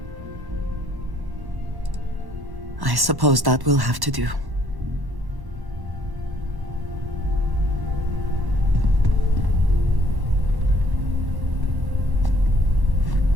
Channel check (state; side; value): late; left; 1.1 ms